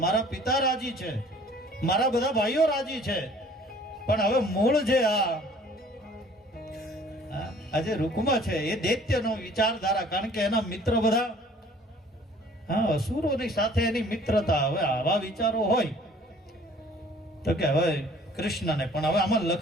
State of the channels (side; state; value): both; normal; correlation 0.53